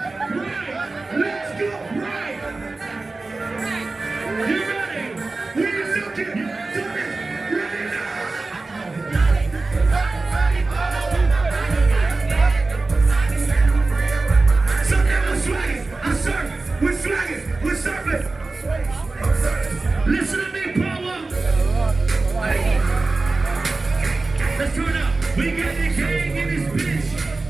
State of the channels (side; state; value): left; quieter; 3.5 dB